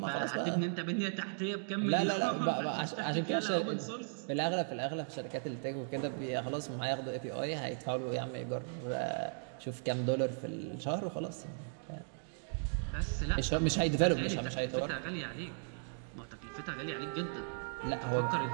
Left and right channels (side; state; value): left; silent; digital silence